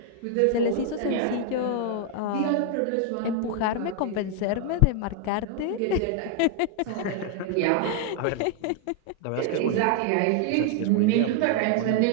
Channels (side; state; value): both; different; correlation 0.00